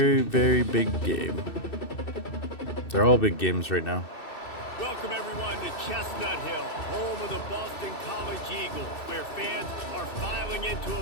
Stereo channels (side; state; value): right; late; 2.6 ms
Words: very big game. They're all big games right now. Welcome everyone to Chestnut Hill, home of the Boston College Eagles, where fans are filing into